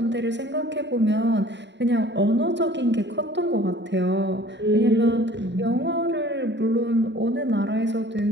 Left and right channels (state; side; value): late; left; 0.52 ms